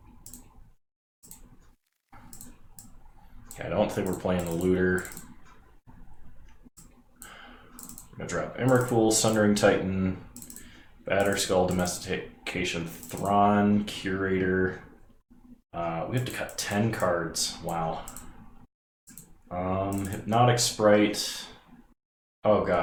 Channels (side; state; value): both; identical; correlation 1.00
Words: Okay, I don't think we're playing the Looter. I'm going to drop Emrakul, Sundering Titan, Batterskull, Domestication, Thrawn, Curator. We have to cut 10 cards. Wow. Hypnotic Sprite. Oh